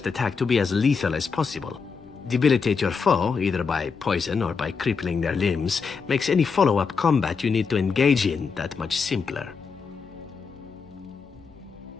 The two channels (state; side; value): quieter; right; 5.4 dB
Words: attack to be as lethal as possible. Debilitate your foe, either by poison or by crippling their limbs, makes any follow-up combat you need to engage in that much simpler.